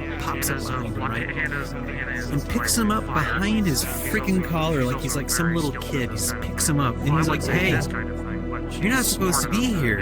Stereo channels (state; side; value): identical; both; correlation 1.00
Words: pops up behind him, right? And picks him up behind his freaking collar like he's like some little kid. He just picks him up, and he's like, hey, you're not supposed to be